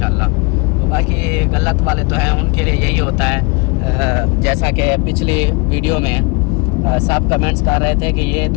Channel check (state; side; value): quieter; right; 30.3 dB